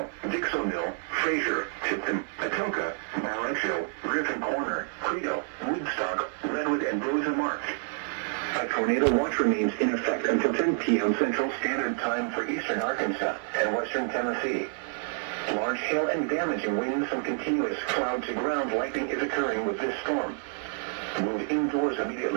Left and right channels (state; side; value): silent; left; 59 dB below the other